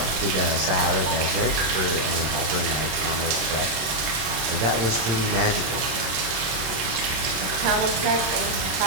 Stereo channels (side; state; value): left; late; 27 ms